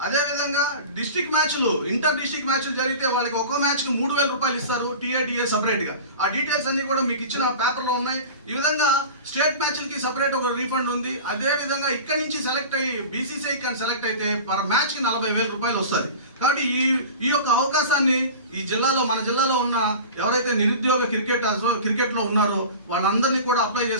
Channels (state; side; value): inverted; both; correlation -0.35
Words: అదే విధంగా డిస్ట్రిక్ట్ మ్యాచ్లు, ఇంటర్ డిస్ట్రిక్ట్ మ్యాచ్లు జరిగితే వాళ్ళకి ఒక్కో మ్యాచ్కి 3000 రూపాయలు ఇస్తారు టీఏ సపరేట్గా. ఆ డీటెయిల్స్ అన్ని కూడా మీకు ఇచ్చిన పేపర్లో ఉన్నాయి. ఈ విధంగా స్టేట్ మ్యాచ్లకి సపరేట్ ఒక రీఫండ్ ఉంది. అదే విధంగా ఇక్కడి నుంచి సెలెక్ట్ అయ్యి బీసీసీఐ కానీ సెలెక్ట్ అయితే పర్ మ్యాచ్కి 40,000 రూపాయలు వస్తుంది. కాబట్టి ఈ యొక్క అవకాశాన్ని ఈ జిల్లాలో, మన జిల్లాలో ఉన్న ఎవరైతే నిరుద్యోగ క్రికెట్లో ఉన్నారో వాళ్ళందరినీ కూడా అప్లై